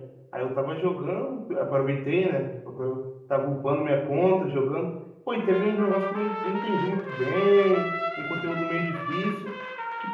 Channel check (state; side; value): identical; both; correlation 1.00